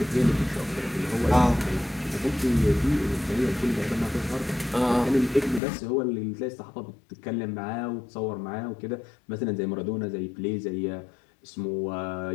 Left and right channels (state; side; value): drops out; right; at 5.6 s